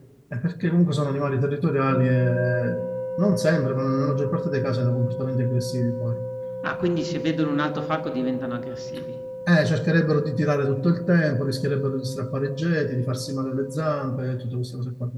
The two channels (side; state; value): both; identical; correlation 1.00